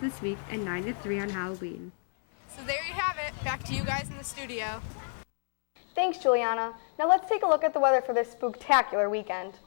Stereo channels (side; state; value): right; silent; 58 dB below the other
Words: week and 9 to 3 on Halloween. So there you have it. Back to you guys in the studio. Thanks, Juliana. Now let's take a look at the weather for this spooktacular weekend.